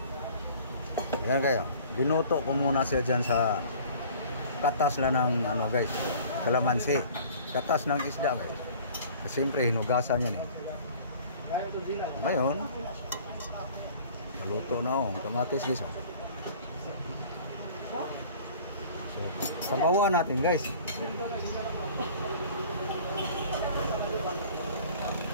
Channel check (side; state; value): both; inverted; correlation -0.48